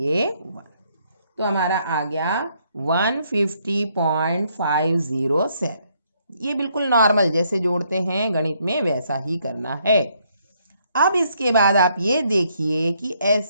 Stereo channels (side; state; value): both; inverted; correlation -0.71